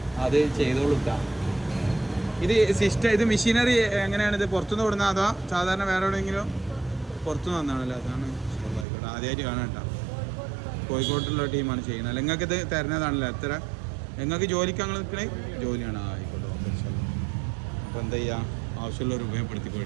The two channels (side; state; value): left; drops out; at 8.8 s